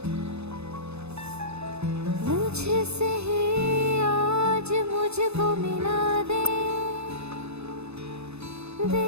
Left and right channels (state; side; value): late; left; 0.80 ms